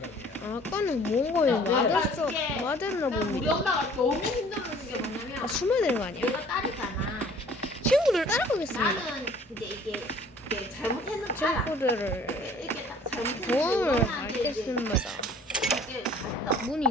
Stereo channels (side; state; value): both; normal; correlation 0.53